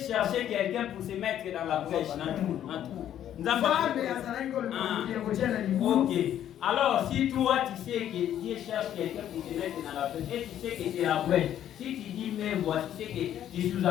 quelqu'un pour se mettre dans la brèche. Ok. Alors, si toi tu sais que Dieu cherche quelqu'un pour te mettre dans la brèche, et tu sais que c'est la brèche, si tu dis mais voici, tu sais que tu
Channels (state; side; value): quieter; right; 10.9 dB